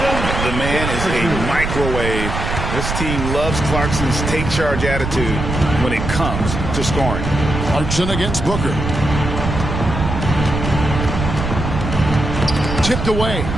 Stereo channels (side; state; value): right; noise; rumble, 4 dB below the sound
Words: man is a microwave This team loves Clarkson's take charge attitude when it comes to scoring. Clarkson against Booker. Tipped away.